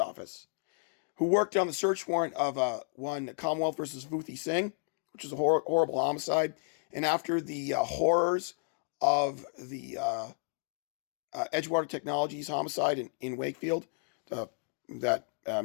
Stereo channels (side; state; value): right; silent; 56 dB below the other